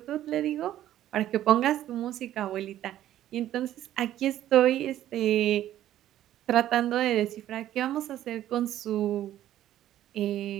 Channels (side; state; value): left; quieter; 12.5 dB